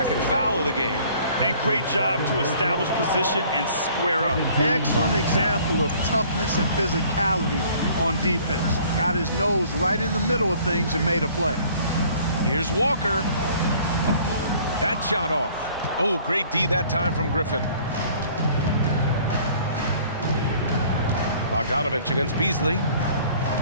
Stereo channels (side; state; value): both; inverted; correlation -0.55